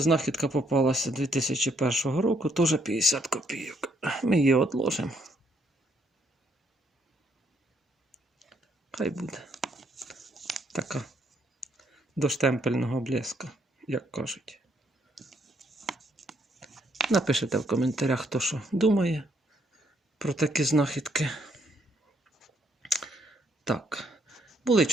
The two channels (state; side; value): normal; both; correlation 0.71